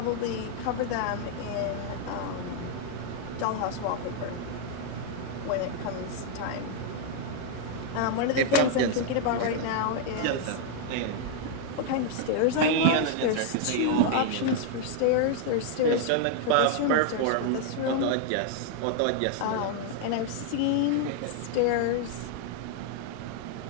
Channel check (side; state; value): both; different; correlation 0.00